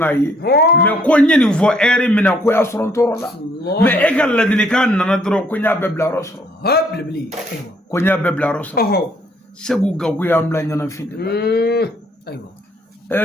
me ko nyeni fo ere mina ko ya soron torola me egal ladini kan nana dro ko nya bebla roso بلبلي أيوة ko nya bebla roso segu gaku ya amla nyana fide أيوة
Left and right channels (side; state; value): both; normal; correlation 0.65